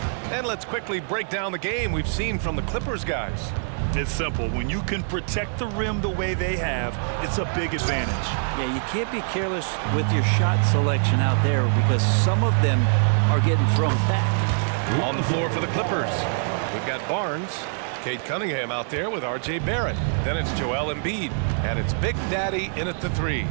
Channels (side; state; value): left; silent; 62 dB below the other